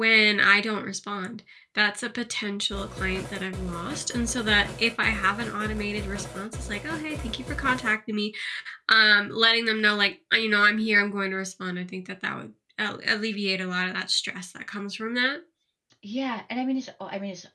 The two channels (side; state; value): both; identical; correlation 1.00